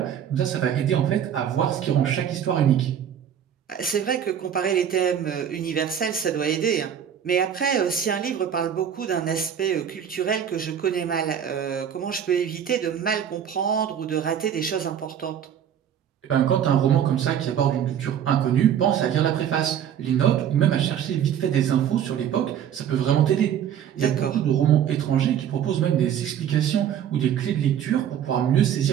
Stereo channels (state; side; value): quieter; left; 9.2 dB